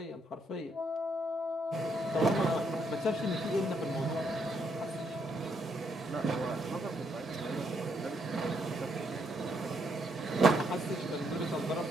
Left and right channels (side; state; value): both; normal; correlation 0.75